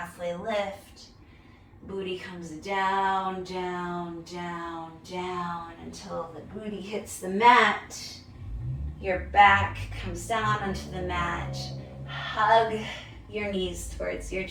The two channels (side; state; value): both; identical; correlation 1.00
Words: lift. Booty comes down, down, down, down until the booty hits the mat. Your back comes down onto the mat. Hug your knees towards your